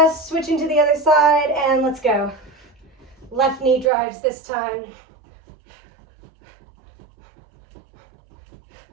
switching to the other side, and let's go. Left knee drives this time.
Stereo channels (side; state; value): left; drops out; at 3.9 s